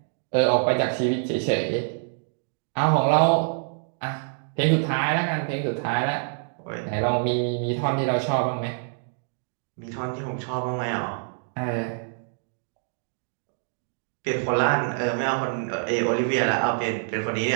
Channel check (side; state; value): left; silent; digital silence